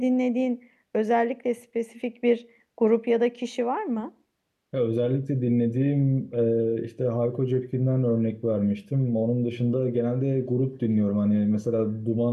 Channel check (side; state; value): both; identical; correlation 1.00